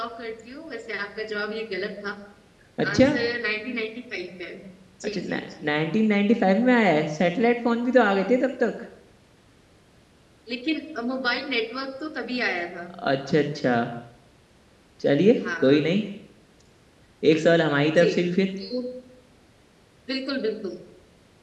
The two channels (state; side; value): identical; both; correlation 1.00